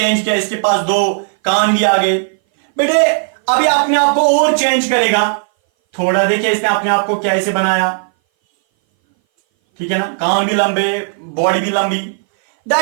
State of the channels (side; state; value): left; silent; 60 dB below the other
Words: किया, इसके पास दो कान भी आ गए बेटे। अभी अपने आप को और चेंज करेगा थोड़ा। देखिए इसने अपने आप को कैसे बनाया, ठीक है ना, कान भी लंबे, बॉडी भी लंबी।